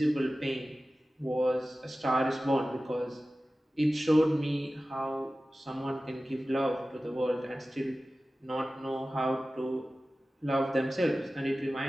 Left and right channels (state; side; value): normal; both; correlation 0.96